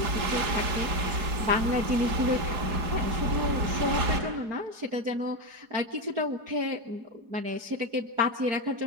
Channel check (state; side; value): late; left; 4.8 ms